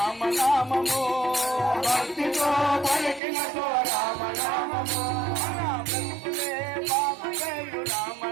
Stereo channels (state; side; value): drops out; left; at 3.2 s